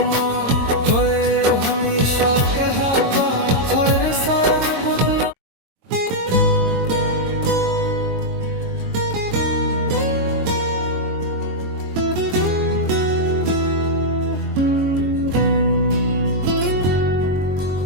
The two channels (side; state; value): left; late; 22 ms